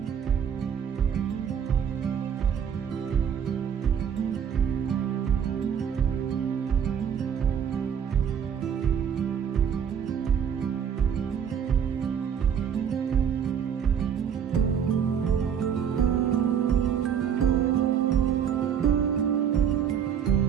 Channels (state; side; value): quieter; left; 8.1 dB